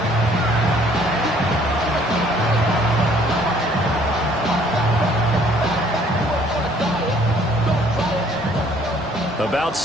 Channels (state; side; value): normal; both; correlation 0.60